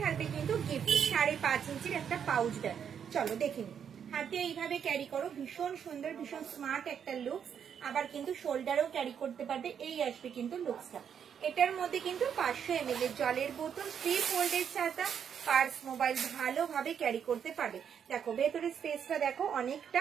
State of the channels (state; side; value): quieter; left; 8.0 dB